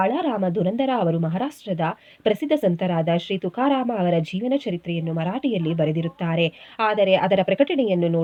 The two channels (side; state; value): both; identical; correlation 1.00